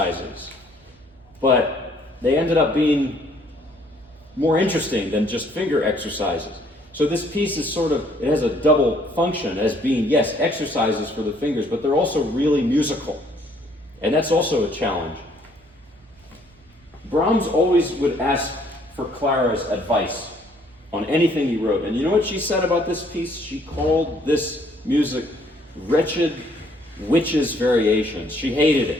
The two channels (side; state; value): both; normal; correlation 0.63